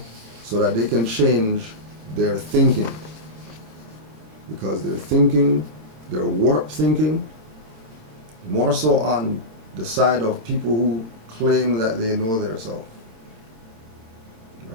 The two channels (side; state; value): left; late; 27 ms